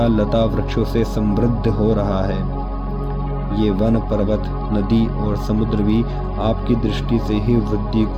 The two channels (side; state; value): both; identical; correlation 1.00